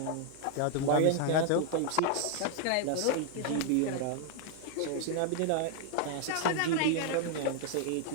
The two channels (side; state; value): both; different; correlation 0.00